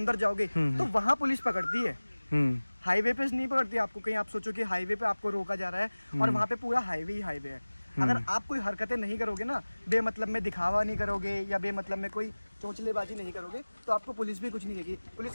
जाओगे तो वहाँ पुलिस पकड़ती है, हाईवे पे नहीं पकड़ती आपको। कहीं आप सोचो कि हाईवे पे आपको रोका जा रहा है और वहाँ पे पूरा हाईवे ही हाईवे है। अगर आप कोई हरकतें नहीं करोगे ना, बेमतलब में दिखावा नहीं करोगे या बेमतलब में कोई चोंचलेबाजी नहीं करोगे, तो आपको पुलिस भी कुछ नहीं देगी। पुलिस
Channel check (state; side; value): inverted; both; correlation -1.00